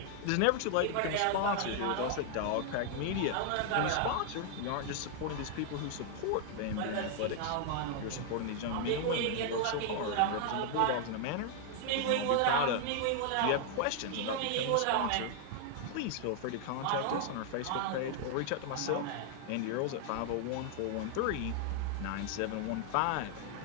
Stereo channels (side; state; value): both; different; correlation 0.00